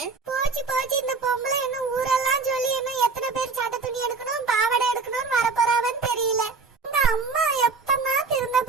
போச்சு இந்த பொம்பளை இன்னும் ஊரெல்லாம் சொல்லி இன்னும் எத்தனை பேர் சட்டை துணி எடுக்கணும் பாவாடை எடுக்கணும்னு வர போறாவன்னு தெரியல. இந்த அம்மா எப்பதான் திருந்த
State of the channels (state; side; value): quieter; left; 4.4 dB